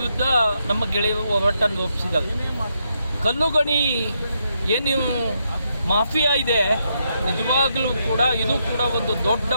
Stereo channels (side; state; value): both; inverted; correlation -0.80